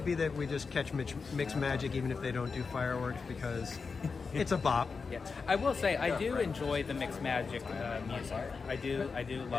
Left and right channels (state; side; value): quieter; right; 4.9 dB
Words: be that we just catch Mixed Magic even if they don't do fireworks because it's a bop. Yeah. I will say I do enjoy the Mixed Magic music. I do